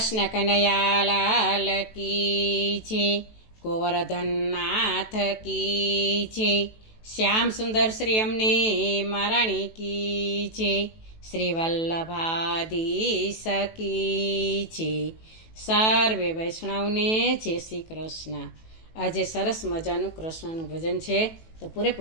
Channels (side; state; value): right; late; 18 ms